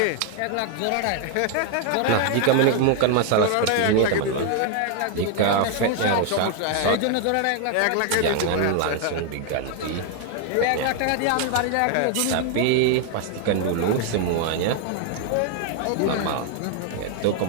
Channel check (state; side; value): different; both; correlation 0.00